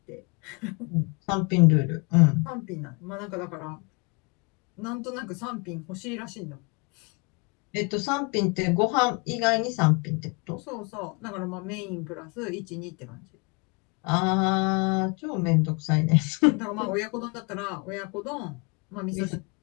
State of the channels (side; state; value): right; quieter; 31.4 dB